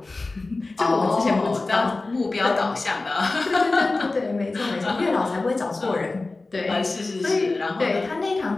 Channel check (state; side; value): quieter; right; 3.3 dB